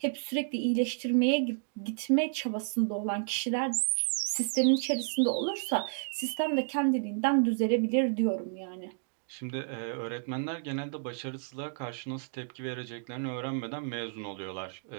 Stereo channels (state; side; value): silent; left; digital silence